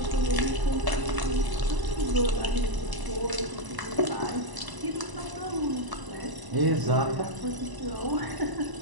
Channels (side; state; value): left; late; 1.0 ms